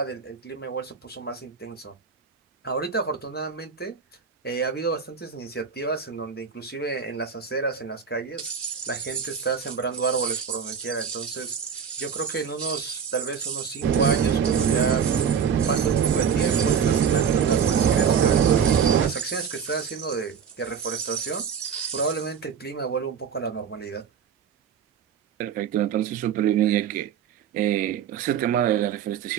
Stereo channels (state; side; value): quieter; left; 7.2 dB